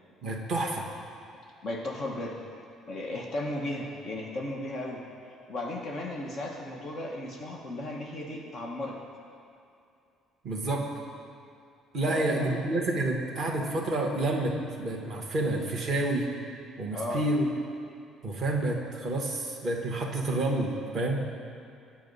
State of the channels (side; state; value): both; normal; correlation 0.60